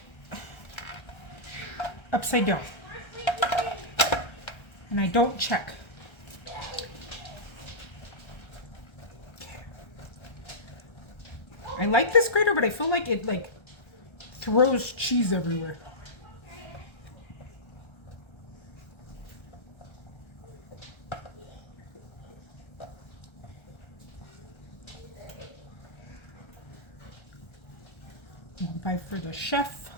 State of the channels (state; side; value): late; right; 1.3 ms